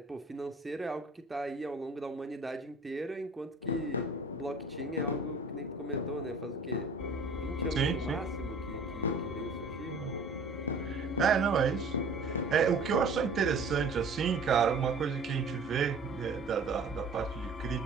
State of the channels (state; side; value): quieter; left; 3.4 dB